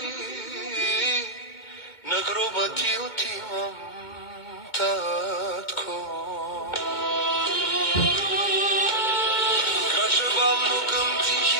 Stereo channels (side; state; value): right; late; 2.2 ms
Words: на гроба ти отивам, татко. Крача бавно към